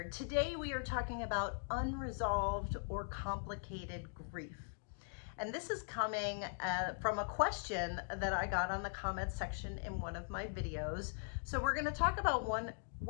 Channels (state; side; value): silent; right; digital silence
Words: Today we are talking about unresolved or complicated grief. And this is coming from a question that I got on the comments section in one of my videos. So we're going to talk about